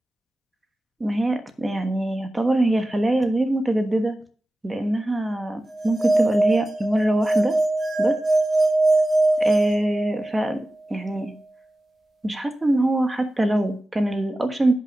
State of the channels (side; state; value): both; normal; correlation 0.95